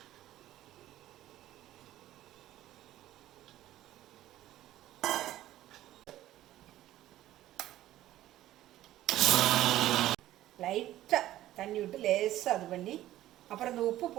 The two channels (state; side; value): quieter; left; 14.1 dB